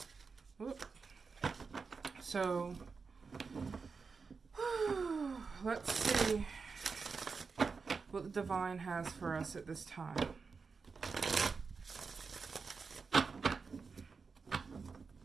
Whoop. So let's see what the divine has for us at this time.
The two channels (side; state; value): left; quieter; 4.9 dB